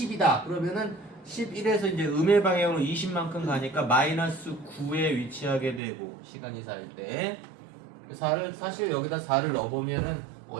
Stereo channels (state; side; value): drops out; left; at 5.8 s